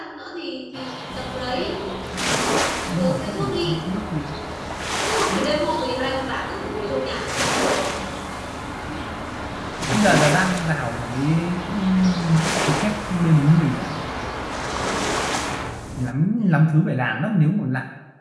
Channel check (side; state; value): both; identical; correlation 1.00